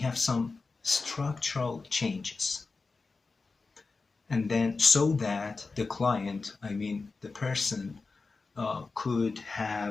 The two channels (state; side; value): quieter; right; 4.1 dB